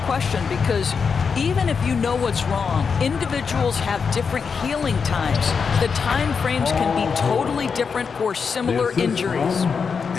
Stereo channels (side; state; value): right; quieter; 5.7 dB